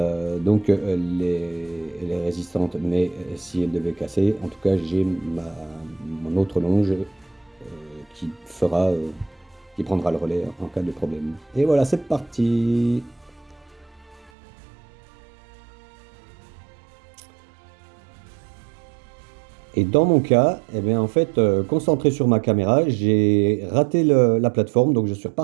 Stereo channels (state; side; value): drops out; left; at 14.3 s